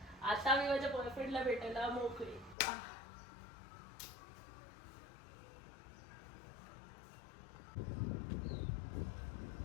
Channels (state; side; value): drops out; right; at 2.6 s